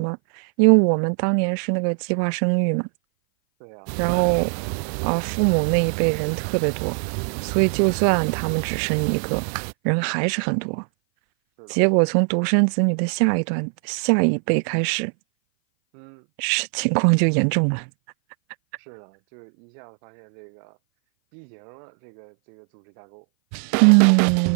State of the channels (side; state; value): left; silent; 59 dB below the other